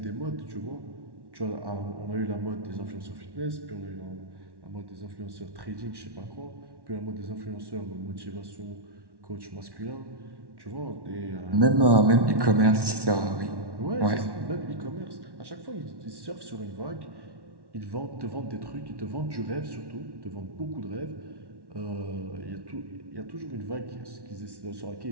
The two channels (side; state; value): left; late; 1.1 ms